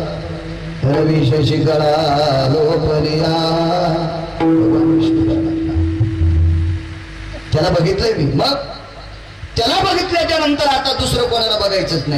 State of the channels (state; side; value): identical; both; correlation 1.00